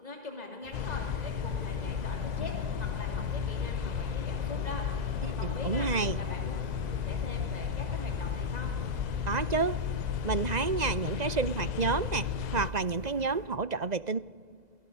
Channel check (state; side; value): late; left; 2.0 ms